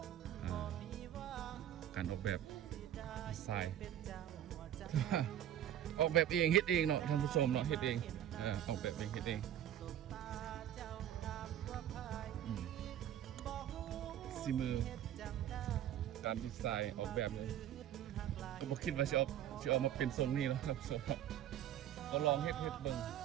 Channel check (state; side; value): quieter; left; 11.2 dB